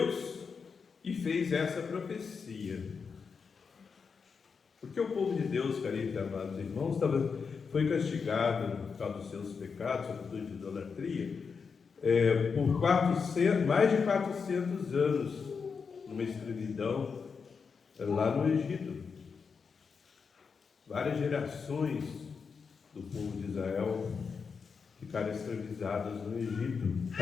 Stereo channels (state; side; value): quieter; right; 5.6 dB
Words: e fez essa profecia. Porque o povo de Deus, caríssimos e amados irmãos, foi castigado por causa dos seus pecados, sobretudo de idolatria, por mais de 400 anos, numa escravidão lá no Egito. Várias gerações do povo de Israel ficaram escravizadas no Egito,